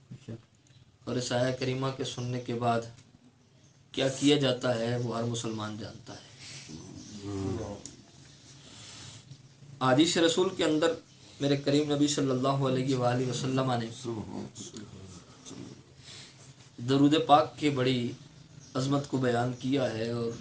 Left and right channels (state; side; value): identical; both; correlation 1.00